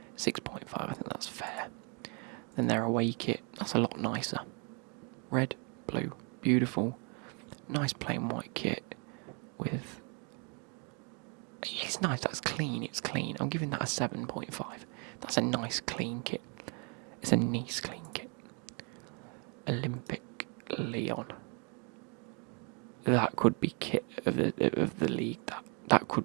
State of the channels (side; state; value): left; quieter; 35.9 dB